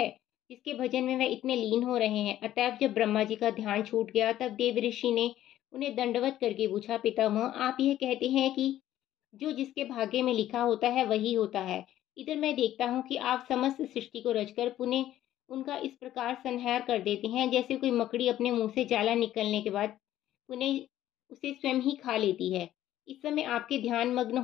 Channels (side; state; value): right; quieter; 13.0 dB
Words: जिसके भजन में वह इतने लीन हो रहे हैं? अतएव जब ब्रह्मा जी का ध्यान छूट गया तब देव ऋषि ने उन्हें दंडवत करके पूछा, पितामह, आप यह कहते हैं कि जो जिसके भाग्य में लिखा होता है वही होता है। इधर मैं देखता हूँ कि आप समस्त सृष्टि को रचकर पुनः उनका इस प्रकार संहार कर देते हैं जैसे कोई मकड़ी अपने मुंह से जाला निकलने के बाद पुनः उसे स्वयं ही खा लेती है। इस समय आपके ध्यान मग्न